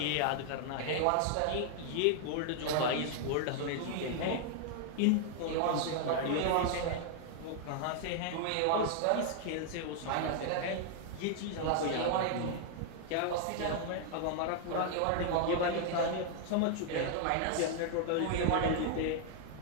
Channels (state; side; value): different; both; correlation 0.00